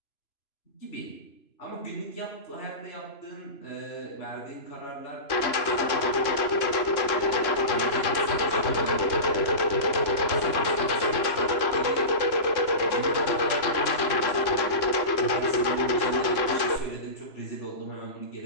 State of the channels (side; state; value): right; late; 3.0 ms